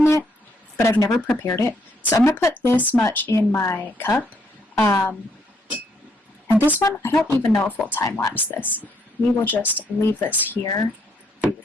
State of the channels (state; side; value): normal; both; correlation 0.72